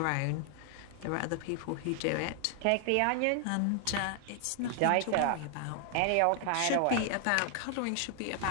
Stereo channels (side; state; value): both; different; correlation 0.00